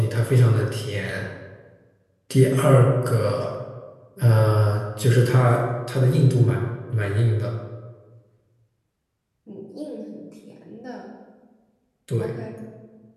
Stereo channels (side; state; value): both; identical; correlation 1.00